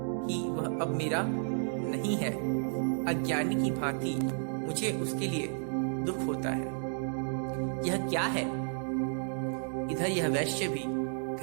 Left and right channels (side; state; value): left; silent; digital silence